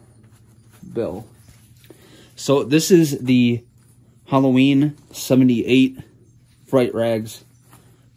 bill. So this is the Halloween 78 Fright Rags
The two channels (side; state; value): both; identical; correlation 1.00